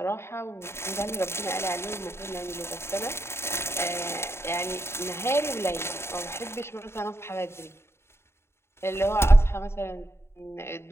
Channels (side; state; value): right; late; 0.12 ms